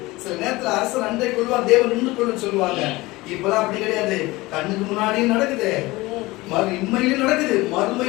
சில நேரத்துல அரசர் அண்டை கொள்வார், தேவன் நின்று கொள்ளுன்னு சொல்லுவாங்க. இப்பதான் அப்படி கிடையாது. கண்ணுக்கு முன்னாடியும் நடக்குது, இம்மையிலும் நடக்குது,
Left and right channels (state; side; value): quieter; right; 20.7 dB